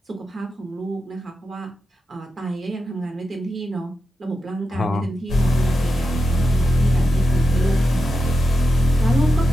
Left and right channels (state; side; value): normal; both; correlation 0.89